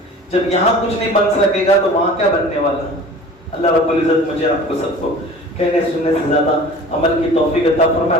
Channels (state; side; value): normal; both; correlation 0.42